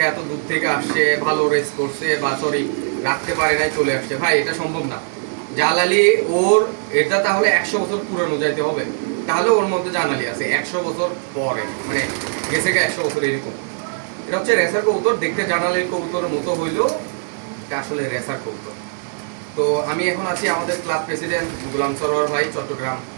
এত দূর থেকে আসছে, ভালো রেস করছে বা সরি রাখতে পারে নাই চলে আসছে। ভাই এটা সম্ভব না। জালালি ওর এটা তাহলে 100 বছর পুরানো যাইতে হবে, তাহলে ওর মধ্যে জালালি আছে 100 বছর পরে, মানে গেছে গে 100 বছর এরকম। এটা হচ্ছে রেসার কবুতর, দেখতে জালালির কবুতরের মতো হইলেও এটা আসলে রেসার কবুতর। তো আমি এখন আছি আমাদের ক্লাব প্রেসিডেন্ট গোলাম সরোয়ার ভাই, চট্টগ্রাম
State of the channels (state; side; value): silent; left; digital silence